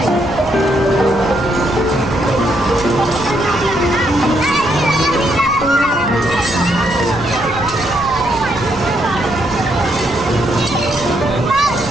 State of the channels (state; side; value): noise; left; rumble, 13 dB below the sound